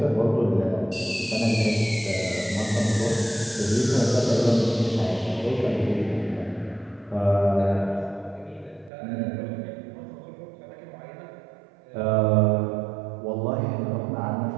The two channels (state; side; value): drops out; left; at 8.9 s